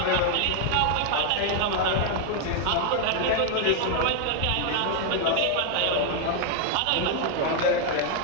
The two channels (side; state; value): both; different; correlation 0.00